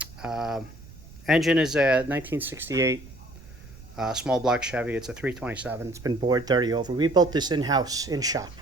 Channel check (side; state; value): right; noise; rumble, 19 dB below the sound